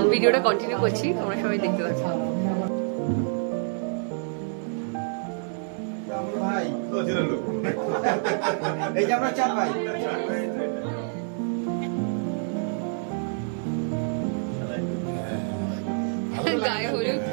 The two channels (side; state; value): left; silent; 60 dB below the other